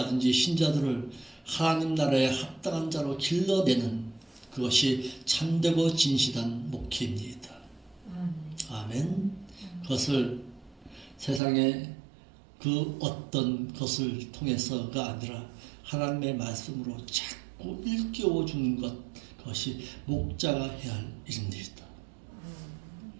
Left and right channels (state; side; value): drops out; left; at 11.4 s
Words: 신자들을 하나님 나라에 합당한 자로 길러내는 그것이 참되고 진실한 목회입니다. 아멘. 그것을 세상의 그 어떤 것을 통해서가 아니라 하나님의 말씀으로 자꾸 일깨워 주는 것, 그것이 목자가 해야 할 일입니다.